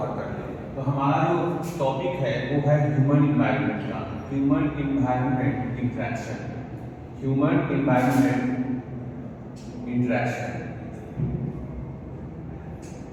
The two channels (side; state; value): both; identical; correlation 1.00